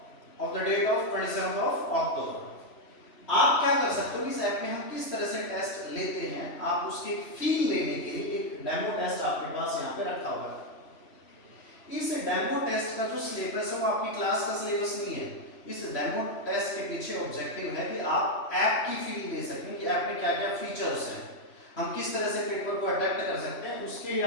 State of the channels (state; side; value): late; right; 3.0 ms